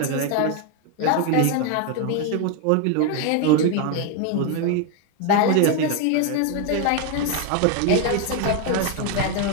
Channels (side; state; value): both; different; correlation 0.01